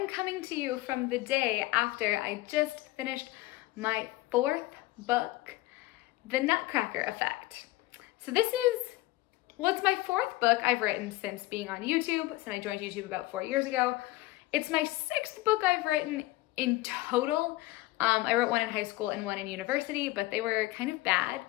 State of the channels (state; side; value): quieter; right; 18.9 dB